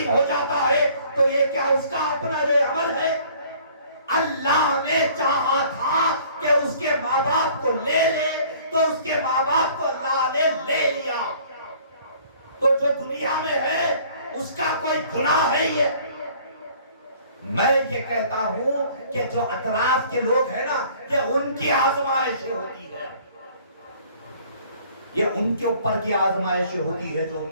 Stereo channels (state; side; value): inverted; both; correlation -0.54